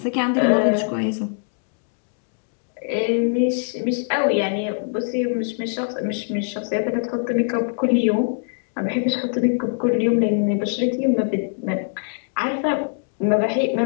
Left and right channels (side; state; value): right; silent; 63 dB below the other